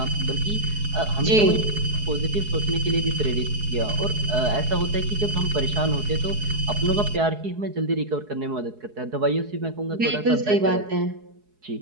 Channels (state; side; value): late; left; 4.7 ms